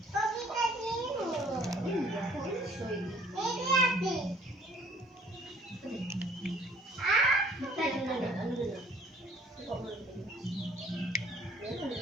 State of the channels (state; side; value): normal; both; correlation 0.58